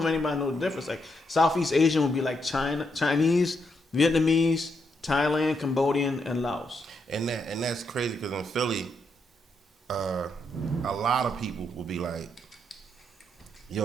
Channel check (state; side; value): normal; both; correlation 0.79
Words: anybody knows the difference. Like Southeast Asian would be like Chinese, Vietnamese, Thailand, Cambodian, and Laos. And that's crazy because in Philly, a lot of people will be like,